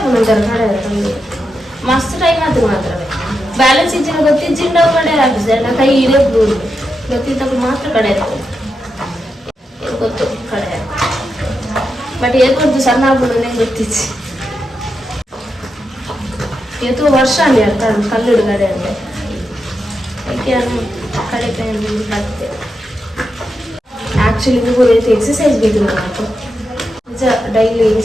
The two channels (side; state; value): both; normal; correlation 0.86